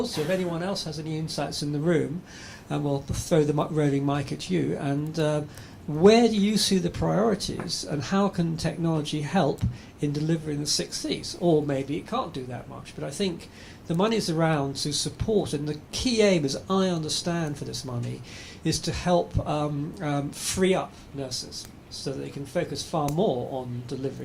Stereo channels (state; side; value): identical; both; correlation 1.00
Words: if anyone else has any insights in the room, and we'll throw the roving mic at you. And where do you see the priorities, and how can technology help in delivering the 6 Cs? Or maybe it can't do that much. But I think the money's around to support, and the key aim, as I understand for this money, is to help free up nurses, so that they can focus far more on